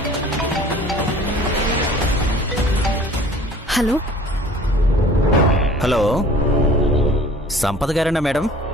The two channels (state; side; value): normal; both; correlation 0.48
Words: హలో హలో, సంపద గారేనా మేడం?